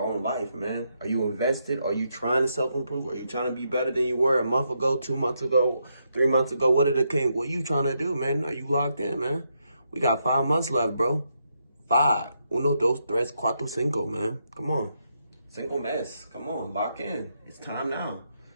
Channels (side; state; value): both; inverted; correlation -0.80